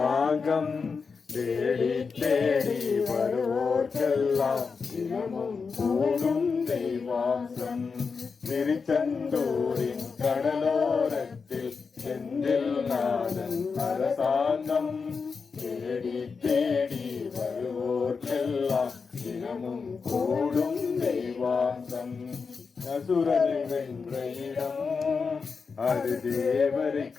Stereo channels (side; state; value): right; quieter; 5.1 dB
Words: தேடி தேடி வருவோர்க்கெல்லாம் தினமும் கூடும் தெய்வாசம். திருச்செந்தூரின் கடலோரத்தில் செந்தில் நாதன் அரசாங்கம் தேடி தேடி வருவோர்க்கெல்லாம் தினமும் கூடும் தெய்வாசம். அசுரரை வென்ற இடம், அது தேவரை